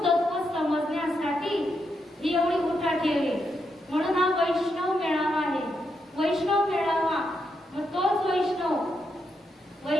तत्व समजण्यासाठी ही एवढी उठाठेव आहे. म्हणून हा वैष्णव मेळावा आहे. वैष्णव मेळावा मग तोच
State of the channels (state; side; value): normal; both; correlation 0.82